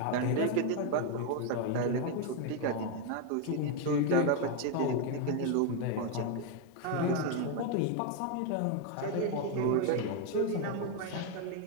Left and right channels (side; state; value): both; different; correlation 0.01